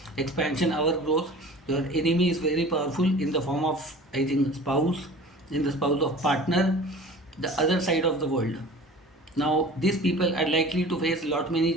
expansion, our growth. Your enemy is very powerful in the form of, I think, spouse, in the spouse of partner, the other side of the world. Now these people are likely to face lot many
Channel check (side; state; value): both; normal; correlation 0.42